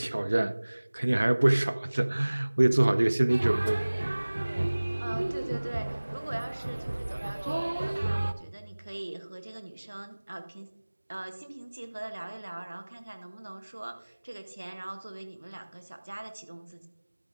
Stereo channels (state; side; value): inverted; both; correlation -1.00